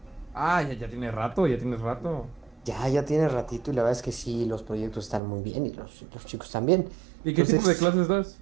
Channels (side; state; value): left; drops out; at 5.2 s